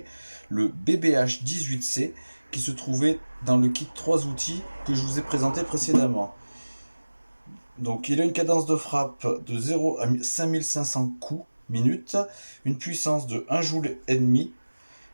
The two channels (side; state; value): both; inverted; correlation -1.00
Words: le BBH 18C, qui se trouvait dans le kit 3 outils que je vous ai présenté précédemment. Donc il a une cadence de frappe de 0 à 5500 coups minute, une puissance de 1 joule et demi,